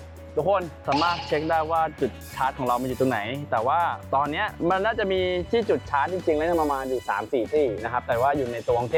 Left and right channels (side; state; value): both; identical; correlation 1.00